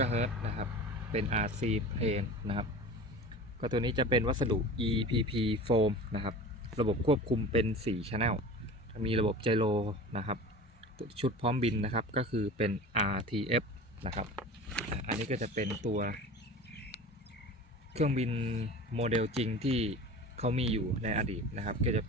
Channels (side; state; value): both; normal; correlation 0.36